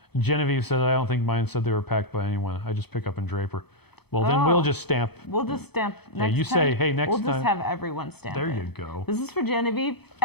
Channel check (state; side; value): late; right; 0.98 ms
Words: Genevieve said, I don't think mine said they were packed by anyone. I just pick up in Draper. Well, then we'll just stamp. We'll just stamp next time. Yeah, you say, hey, next time. We'll just have everyone stamp There it. you go. This is for Genevieve.